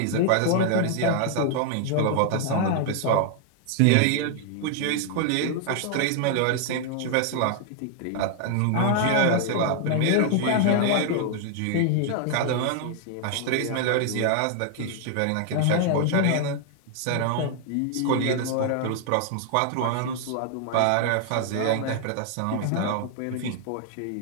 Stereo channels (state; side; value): different; both; correlation 0.00